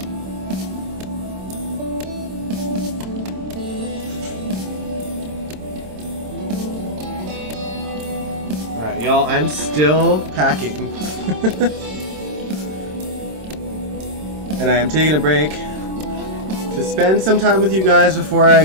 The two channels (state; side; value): late; left; 26 ms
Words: Alright, y'all, I'm still packing. And I am taking a break to spend some time with you guys before I